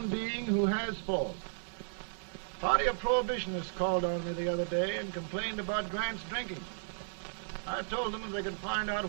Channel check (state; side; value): silent; left; 55 dB below the other